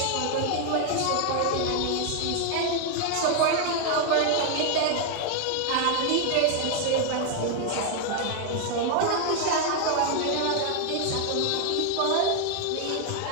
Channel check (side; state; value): both; different; correlation 0.00